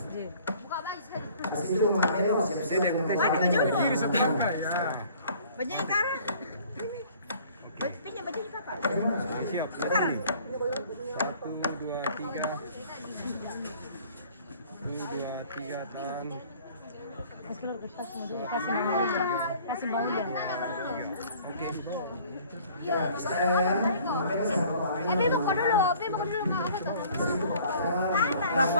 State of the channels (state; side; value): inverted; both; correlation -0.53